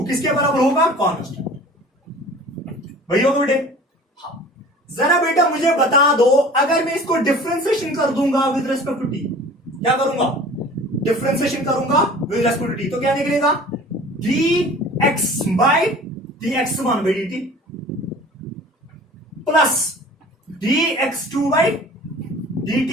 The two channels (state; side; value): normal; both; correlation 0.44